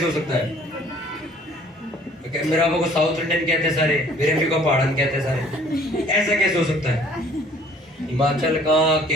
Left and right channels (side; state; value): both; normal; correlation 0.55